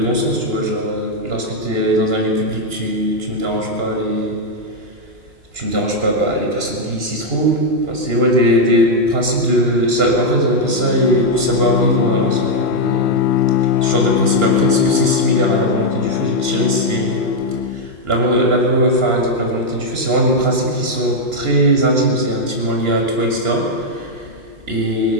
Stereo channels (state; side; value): late; left; 2.9 ms